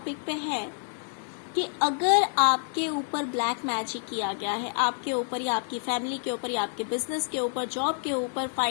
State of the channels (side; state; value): right; silent; digital silence